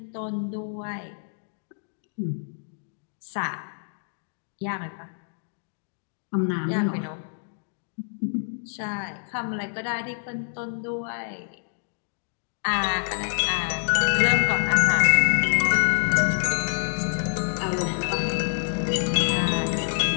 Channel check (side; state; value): right; silent; digital silence